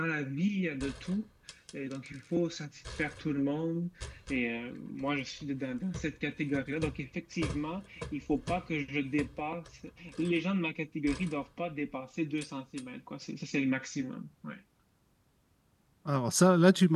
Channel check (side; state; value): both; identical; correlation 1.00